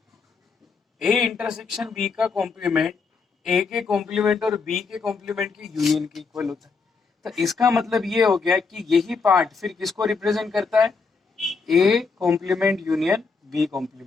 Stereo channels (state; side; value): quieter; right; 4.8 dB